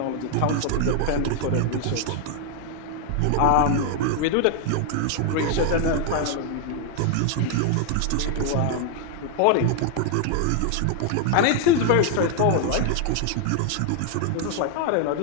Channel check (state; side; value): different; both; correlation 0.00